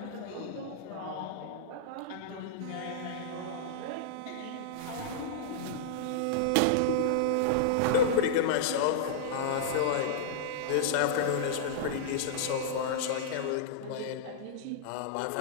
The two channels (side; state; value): both; different; correlation -0.02